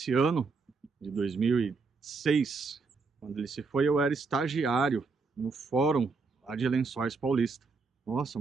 ano de 2006, quando ele se foi, eu era estagiário no fórum lá de Lençóis Paulista. Nossa,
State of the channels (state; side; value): quieter; left; 4.4 dB